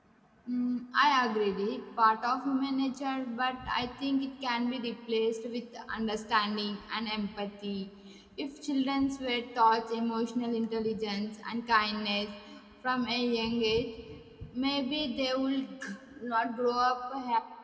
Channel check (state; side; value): identical; both; correlation 1.00